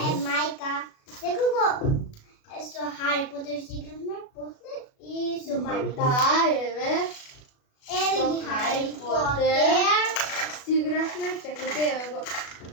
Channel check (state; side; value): late; right; 36 ms